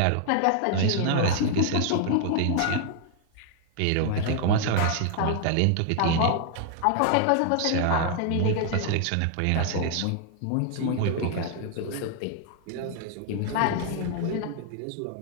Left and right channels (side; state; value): both; different; correlation 0.00